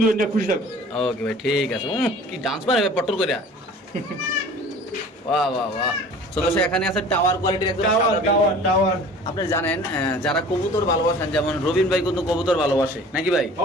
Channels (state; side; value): normal; both; correlation 0.45